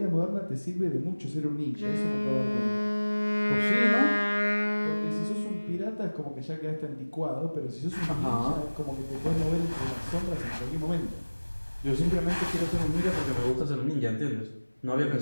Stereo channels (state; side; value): inverted; both; correlation -1.00